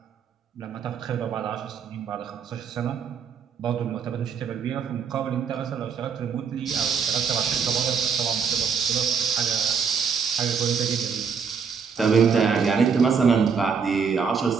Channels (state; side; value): quieter; left; 6.3 dB